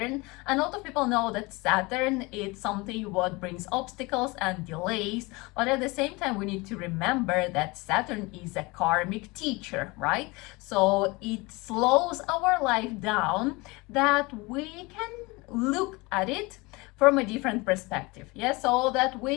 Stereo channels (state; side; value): quieter; right; 24.6 dB